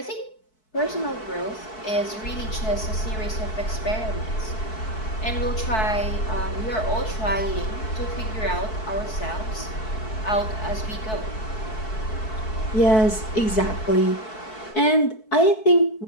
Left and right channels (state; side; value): late; right; 4.6 ms